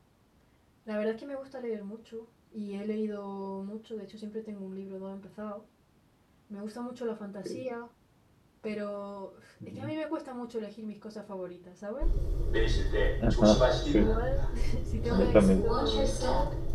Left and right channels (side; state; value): both; identical; correlation 1.00